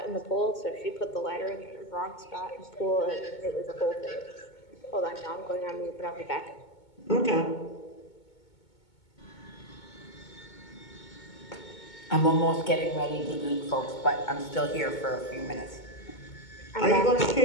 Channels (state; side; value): late; right; 2.2 ms